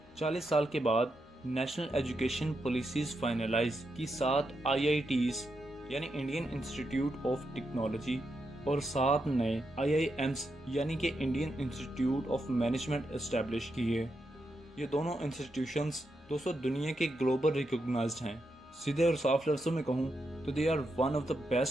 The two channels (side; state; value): both; normal; correlation 0.84